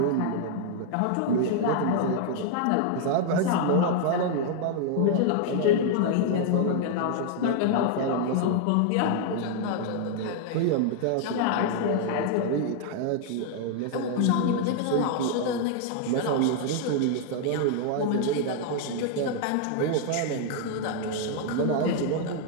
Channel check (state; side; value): different; both; correlation 0.00